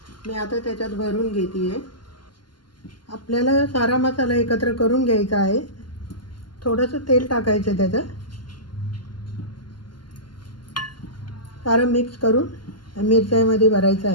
मी आता त्याच्यात भरून घेते आहे। आपल्याला सारा मसाला एकत्र करून घ्यायचा आहे। थोडंसं तेल टाकायचं त्याच्यात, सारं मिक्स करून मिरच्यामध्ये भरायचं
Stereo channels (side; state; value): right; late; 0.71 ms